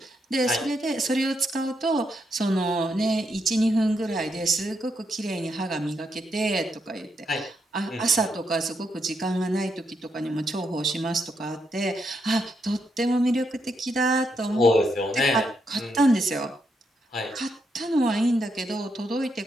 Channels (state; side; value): normal; both; correlation 0.80